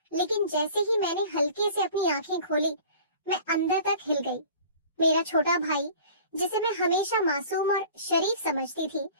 लेकिन जैसे ही मैंने हल्के से अपनी आंखें खोली, मैं अंदर तक हिल गई। मेरा छोटा भाई, जिसे मैं हमेशा मासूम और शरीफ समझती थी,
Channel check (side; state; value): both; inverted; correlation -0.45